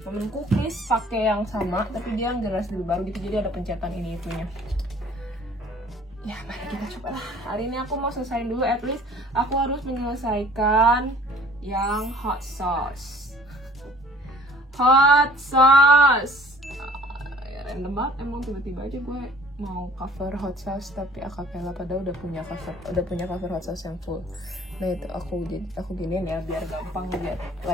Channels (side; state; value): both; normal; correlation 0.53